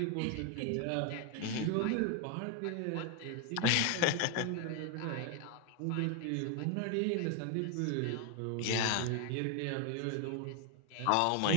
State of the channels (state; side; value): different; both; correlation 0.01